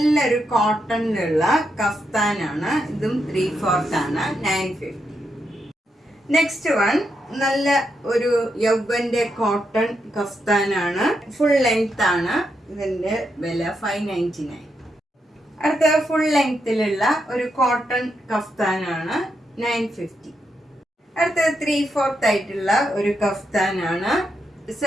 കോട്ടണിലുള്ള കഫ്താനാണ്. ഇതും 3/4 ആണ്. 950. നെക്സ്റ്റ് വൺ നല്ല ഒരു യൗവന്റെ കോട്ടൺ കഫ്താനാണ്. ഫുൾ ലെങ്ത് ആണ്. ഇതിന്റെ വില 599. അടുത്ത ഫുൾ ലെങ്ത്തിലുള്ള ഒരു കോട്ടൺ കഫ്താനാണ് 950. അടുത്ത 3/4 ആയിട്ടുള്ള ഒരു കഫ്താനാണ്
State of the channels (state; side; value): normal; both; correlation 0.82